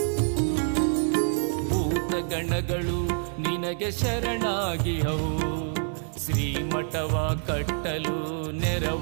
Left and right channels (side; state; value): left; silent; 60 dB below the other